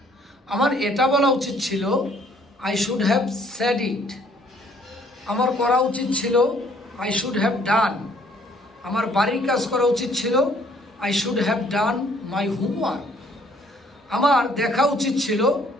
আমার এটা বলা উচিত ছিল I should have said it. আমার করা উচিত ছিল আই শুড হ্যাভ ডান। আমার বাড়ির কাজ করা উচিত ছিল I should have done my homework. আমার দেখা উচিত ছিল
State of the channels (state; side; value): normal; both; correlation 0.62